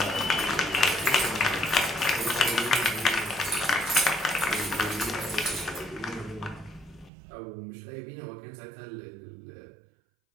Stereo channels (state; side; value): drops out; left; at 7.1 s